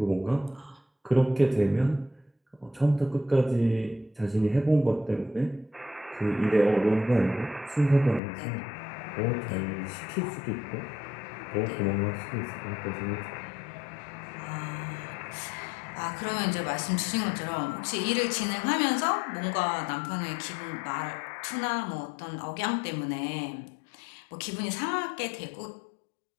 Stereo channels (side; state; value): right; drops out; at 8.2 s